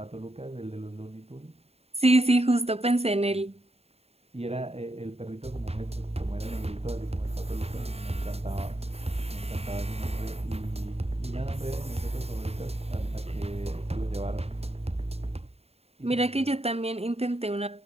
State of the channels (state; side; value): late; left; 0.30 ms